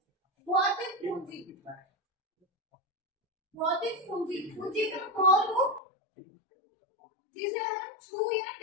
भौतिक पूंजी। भौतिक पूंजी, पूंजी का वो रूप जिसे हम छू या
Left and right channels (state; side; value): drops out; right; at 5.8 s